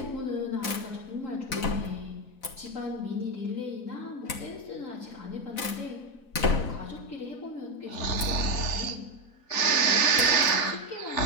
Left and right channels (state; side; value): late; right; 4.0 ms